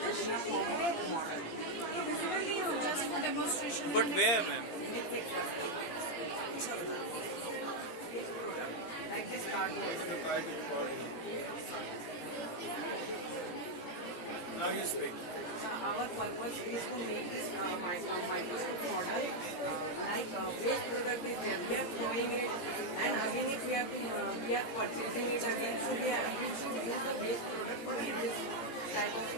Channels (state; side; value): late; right; 17 ms